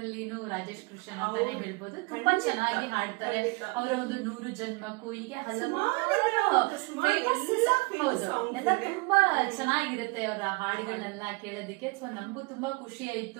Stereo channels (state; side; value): quieter; left; 28.2 dB